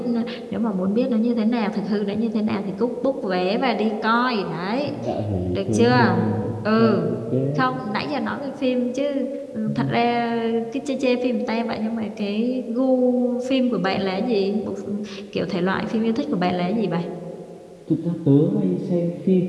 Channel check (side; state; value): both; identical; correlation 1.00